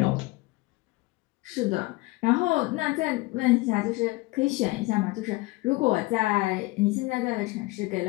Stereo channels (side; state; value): right; quieter; 21.9 dB